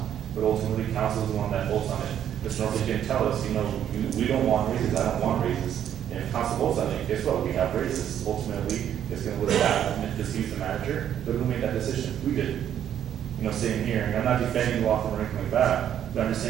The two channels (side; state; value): left; quieter; 10.0 dB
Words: but ultimately, council is the one that votes on it. Mr. Northey can tell us, we don't want raises, I don't want raises. And if council votes on it, guess what, we have raises. Ultimately, it's gonna look bad, and if he's the manager, but who made that decision? We did. Sitting here, and I'm not defending the law firm or anything like that, but I'm just